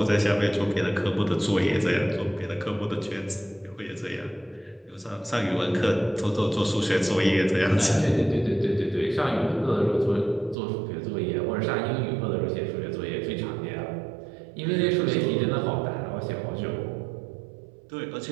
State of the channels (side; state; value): left; drops out; at 10.6 s